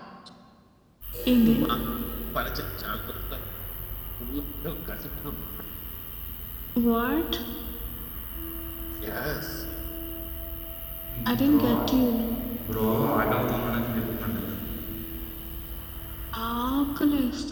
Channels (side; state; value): both; identical; correlation 1.00